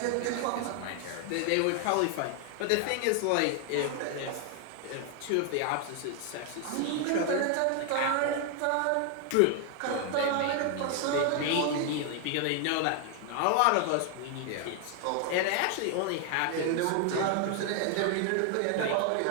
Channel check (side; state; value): both; different; correlation 0.00